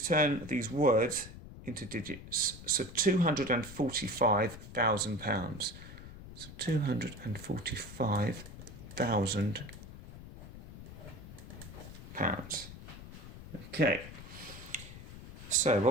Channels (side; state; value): left; noise; rumble, 14 dB below the sound